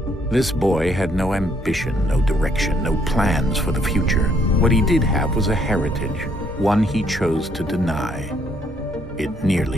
This boy had no ambition, no direction, no plans for the future. What he did have was a heritage, one he chose to deny. It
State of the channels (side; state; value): both; normal; correlation 0.69